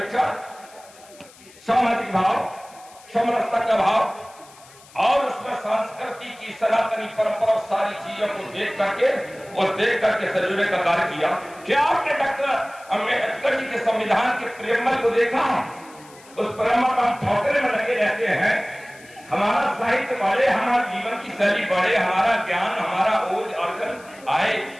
सामाजिक भाव, समरसता का भाव और उसमें संस्कृति की सनातनी परंपरा, सारी चीजों को देख करके सजोने का कार्य किया। क्या आपने डॉक्टर अम्बेडकर जी के संविधान के प्रेमल को देखा? उस प्रेमल का हम ठोकरे में लगे रहते हैं। हमारा साहित्य बढ़े, हमारा जीवन की शैली बढ़े, हमारा ज्ञान, हमारा ओज अर्जन आए,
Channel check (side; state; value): left; noise; hiss, 24 dB below the sound